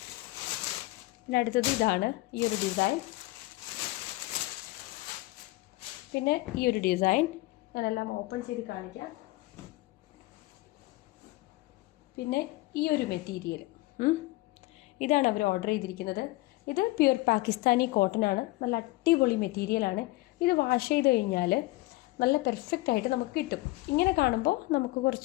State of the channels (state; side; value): quieter; right; 20.2 dB